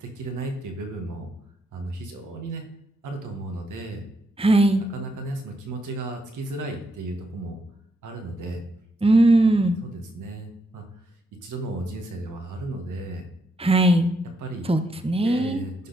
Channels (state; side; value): normal; both; correlation 0.78